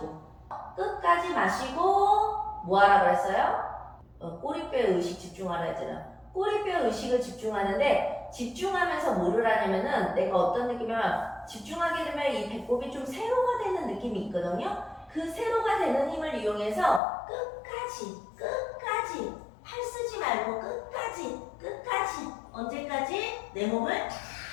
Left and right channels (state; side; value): drops out; right; at 17.0 s